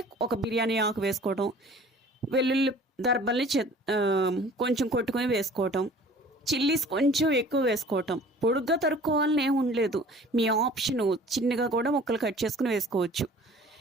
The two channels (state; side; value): normal; both; correlation 0.48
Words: ఒక బిర్యానీ ఆకు వేసుకోవడం, వెల్లుల్లి దర్బల్ని కొంచెం కొట్టుకొని వేసుకోవటం, చిల్లీస్ కొంచెం ఎక్కువ వేసుకోవటం. పొడుగ్గా తరుక్కోవాలని ఏమి ఉండలేదు, మీ ఆప్షను. చిన్నగా కూడా ముక్కలు కట్ చేసుకుని వేసుకోవచ్చు.